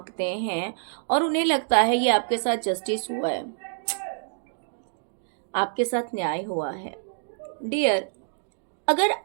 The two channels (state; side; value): silent; left; digital silence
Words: हैं, और उन्हें लगता है ये आपके साथ जस्टिस हुआ है, आपके साथ न्याय हुआ है। डियर, अगर